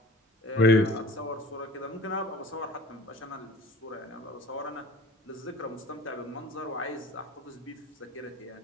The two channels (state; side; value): normal; both; correlation 0.44